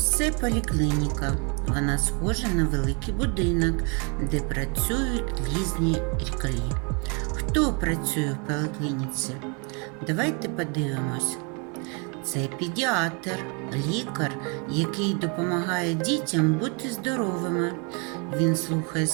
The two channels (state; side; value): quieter; left; 34.4 dB